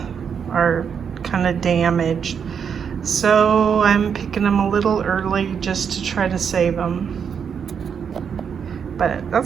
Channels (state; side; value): quieter; left; 7.1 dB